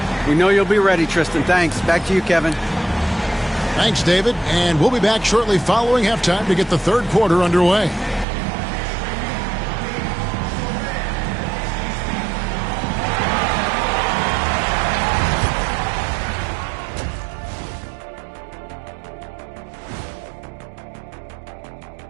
We know you'll be ready, Tristan. Thanks. Back to you, Kevin. Thanks, David. And we'll be back shortly following halftime to get the third quarter underway.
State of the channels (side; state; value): left; drops out; at 8.2 s